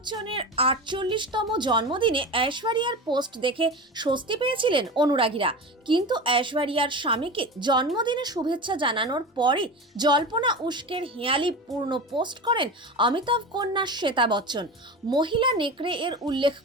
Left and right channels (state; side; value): normal; both; correlation 0.28